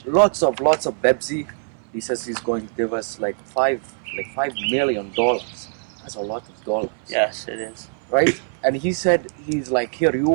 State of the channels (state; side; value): silent; left; 60 dB below the other